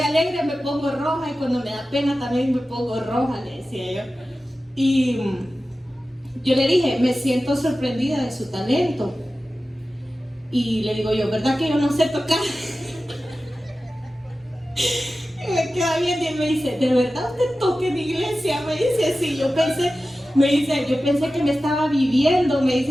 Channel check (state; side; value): normal; both; correlation 0.94